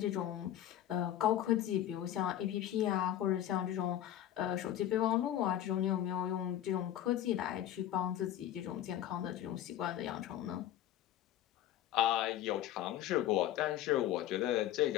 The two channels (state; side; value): quieter; right; 12.1 dB